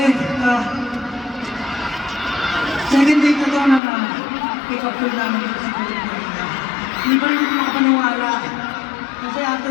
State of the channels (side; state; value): right; drops out; at 3.8 s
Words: second day na to na pick up tour namin dito sa Pilipinas. Hindi pa rin ako makapaniwala. Kasi